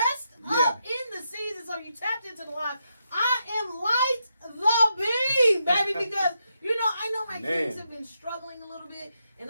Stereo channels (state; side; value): inverted; both; correlation -0.83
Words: up in the season, so you tapped into the live. I am light the beam, baby, because, I know my kids have been struggling a little bit,